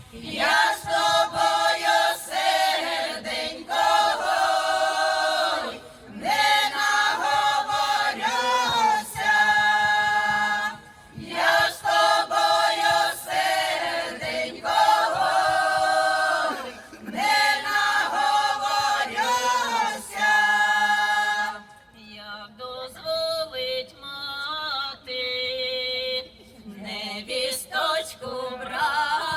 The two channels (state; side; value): identical; both; correlation 1.00